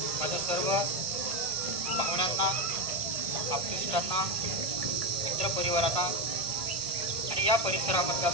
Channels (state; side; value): late; left; 1.5 ms